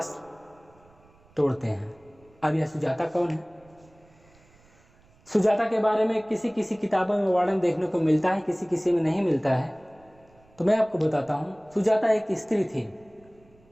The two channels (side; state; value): right; noise; rumble, 29 dB below the sound